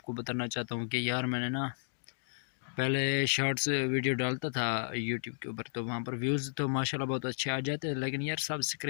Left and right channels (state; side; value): silent; right; digital silence